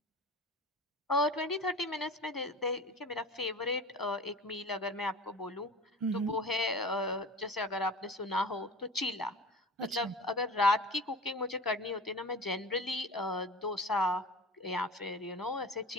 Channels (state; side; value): normal; both; correlation 0.36